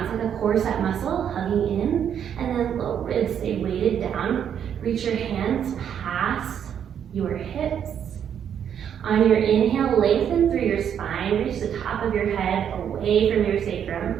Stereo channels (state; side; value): quieter; left; 8.7 dB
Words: It's like a corset muscle, hugging in. And then low ribs stay weighted down. Reach your hands past your hips. On your inhale, lengthen through your spine. Reach the top of your head away from your sacrum.